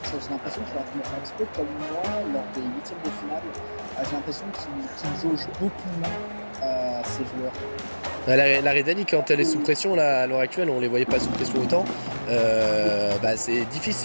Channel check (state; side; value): inverted; both; correlation -1.00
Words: J'ai l'impression qu'il est en train de faire un petit peu comme moi lors des huitièmes de finale. J'ai l'impression qu'il jauge beaucoup moins ses joueurs. La Rhédanie, quand elle est sous pression, là, à l'heure actuelle, on les voyait pas sous pression autant. C'est